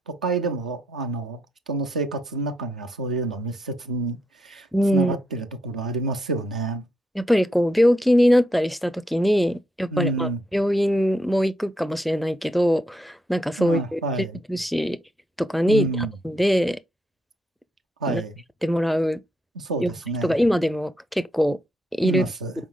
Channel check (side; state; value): both; normal; correlation 0.80